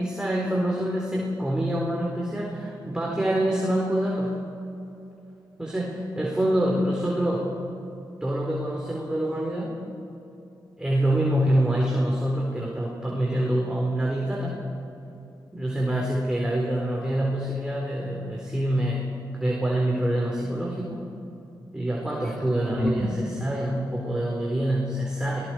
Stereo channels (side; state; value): both; normal; correlation 0.89